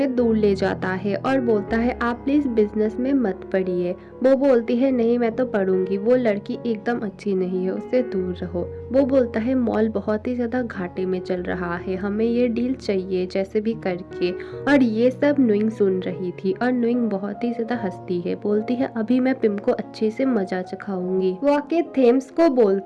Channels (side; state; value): both; identical; correlation 1.00